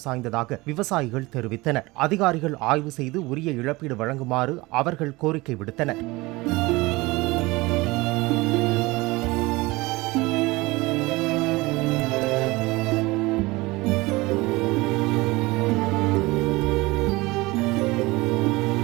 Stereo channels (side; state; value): left; quieter; 21.9 dB